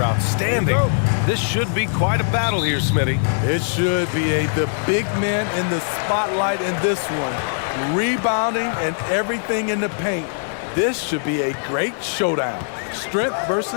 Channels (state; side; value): silent; right; digital silence